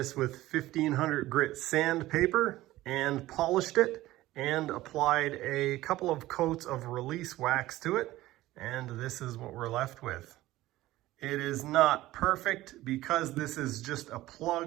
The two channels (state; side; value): quieter; left; 16.5 dB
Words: with 1500 grit sandpaper and polished it and applied a couple of coats of release wax to it, and this is what we're left with. It is not perfect because this is just a